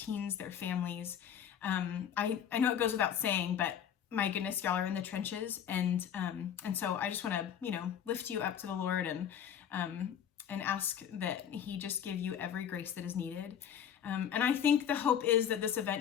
their families. I know it goes without saying, but my goodness, y'all are in the trenches. And so I just want to, lift you up to the Lord and ask that he just give you every grace that is needed. And I think the hope is that this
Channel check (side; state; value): right; quieter; 9.0 dB